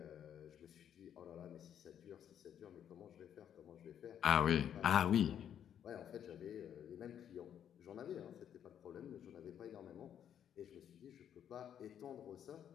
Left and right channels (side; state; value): right; quieter; 9.4 dB